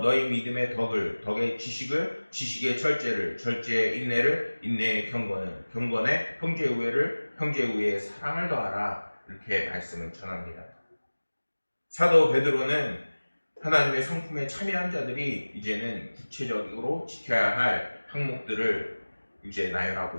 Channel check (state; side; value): inverted; both; correlation -1.00